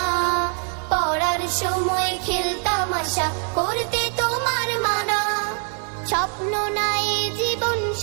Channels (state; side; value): quieter; left; 39.4 dB